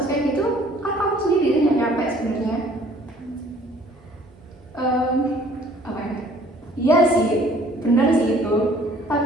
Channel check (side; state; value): both; normal; correlation 0.57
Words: kayak gitu kan kamu sendiri yang capek sebenarnya. Apa ya? Iya sih, benar sih itu.